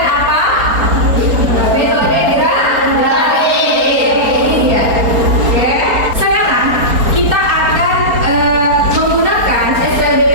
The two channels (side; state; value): left; late; 4.3 ms